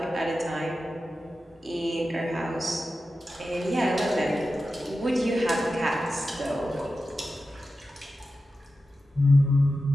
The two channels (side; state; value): both; normal; correlation 0.92